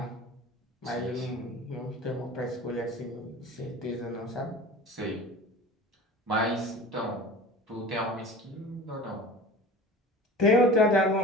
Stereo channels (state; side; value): normal; both; correlation 0.37